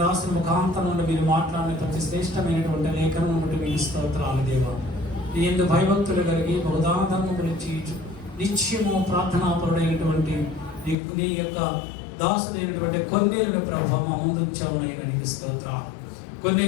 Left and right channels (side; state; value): right; drops out; at 11.0 s